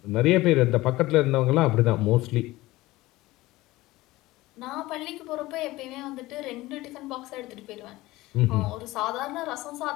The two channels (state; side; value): quieter; right; 18.7 dB